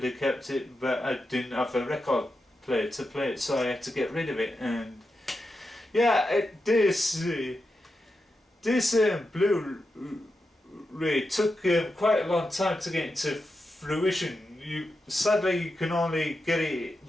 have kept it, but I didn't have a record player to play it, so I had to get rid of it. And yeah, this Blu-ray took quite a long time to get into fruition. Sadly you can only get it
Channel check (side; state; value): both; normal; correlation 0.88